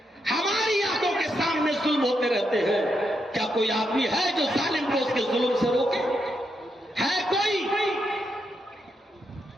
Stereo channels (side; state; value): both; normal; correlation 0.82